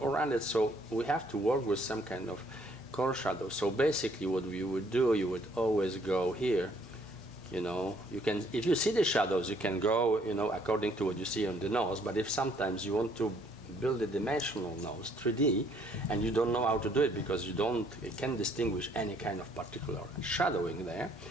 So we have to work with some kind of core shadow. So basically what we would do, you would always go here You know, you can, if you see the shadows, you can go, you know, according to what you see on the nose. But if sometimes you want to build a dimensional nose, 3D, and you don't know how to do it because you can't distinguish any kind of particular shadowing there,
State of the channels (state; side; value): normal; both; correlation 0.64